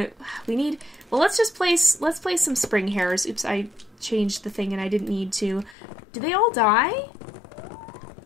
We need. Well, let's place some spring hares. Oops, I changed the thing and I didn't need to. Did they all die?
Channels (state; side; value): drops out; right; at 5.8 s